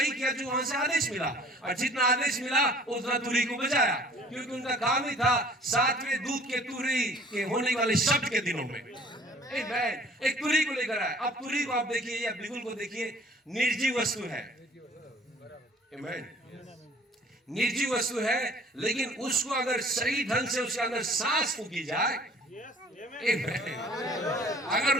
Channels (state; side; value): normal; both; correlation 0.52